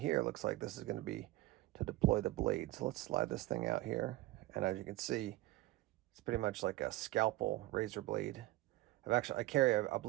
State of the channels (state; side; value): quieter; left; 17.8 dB